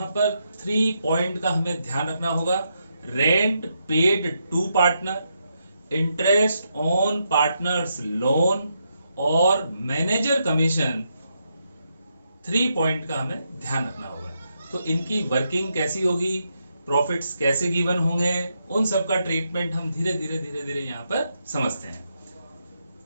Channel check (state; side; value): inverted; both; correlation -0.81